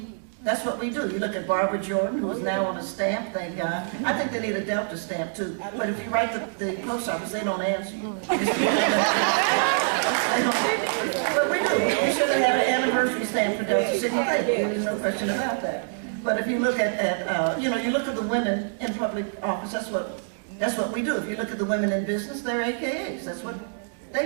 do. You look at Barbara Jordan, who is now on a stamp, thank God. I think they need a Delta stamp too, but if you write the post office, they don't answer you. But we do. We should have had an anniversary stamp for Delta Sigma Theta. There's no question about that. But if you look at you know, you look at the women in public office, that's what we do. If you look at the women in business, they're AKAs. That's what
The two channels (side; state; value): left; silent; digital silence